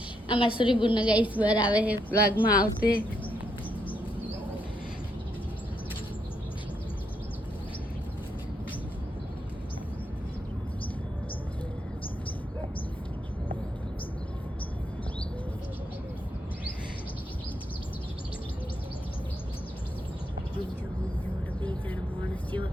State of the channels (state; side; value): normal; both; correlation 0.78